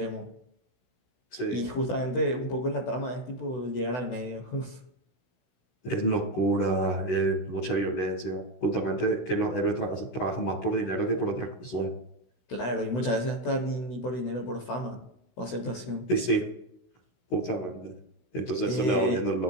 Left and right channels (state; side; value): late; right; 16 ms